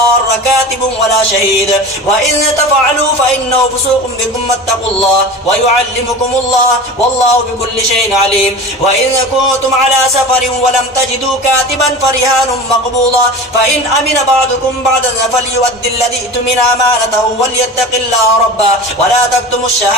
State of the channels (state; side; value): normal; both; correlation 0.33